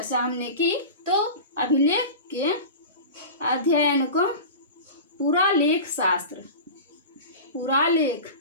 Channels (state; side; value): inverted; both; correlation -0.31